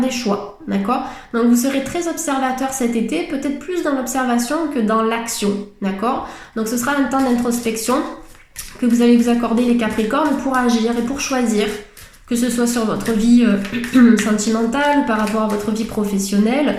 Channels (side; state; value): both; identical; correlation 1.00